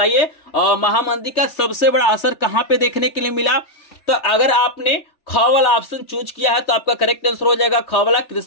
महामंदी का सबसे बड़ा असर कहां पे देखने के लिए मिला? तो अगर आपने ख वाला ऑप्शन चूज किया है तो आपका करेक्ट आंसर हो जाएगा ख वाला,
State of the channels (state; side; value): late; right; 3.2 ms